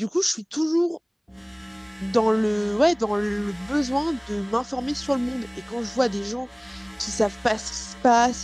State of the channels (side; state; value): both; identical; correlation 1.00